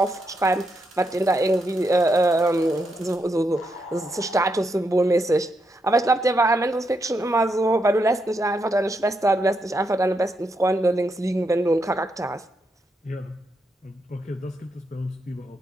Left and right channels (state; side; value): normal; both; correlation 0.81